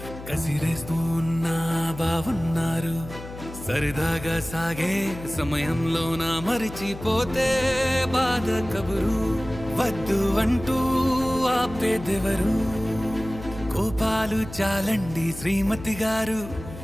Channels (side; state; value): left; noise; hum, 13 dB below the sound